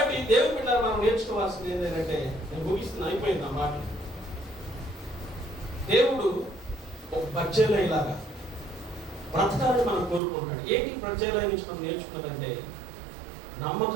దేవుని బిడ్డలారా, మనం నేర్చుకోవాల్సింది ఏంటంటే, నేను ముగిస్తున్నా, అయిపోయింది ఆ మాట. దేవుడు ఒక బర్జిల్లయిలాగా బ్రతకాలని మనం కోరుకుంటాడు. ఏంటి బర్జిల్లయి నుంచి మనం నేర్చుకున్నదంటే,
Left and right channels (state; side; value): drops out; left; at 10.2 s